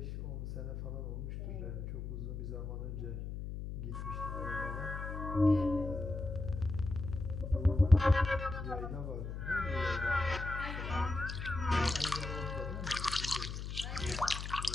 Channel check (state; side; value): noise; left; hum, 6 dB below the sound